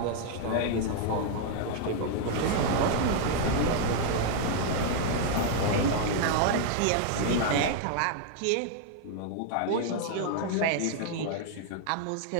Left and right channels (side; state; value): both; different; correlation 0.00